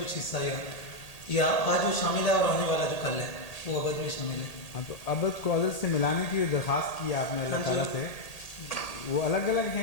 کچھ حصہ ہے, یا آج جو شامل ہے اور آنے والا جو کل ہے وہ ابد میں شامل ہے. ہاں, تو ابد کو ازل سے ملانے کی جو درخواست کی آپ نے اللہ تعالیٰ سے, وہ الگ الگ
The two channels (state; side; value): late; right; 1.8 ms